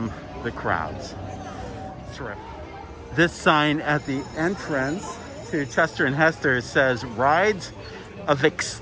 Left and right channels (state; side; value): identical; both; correlation 1.00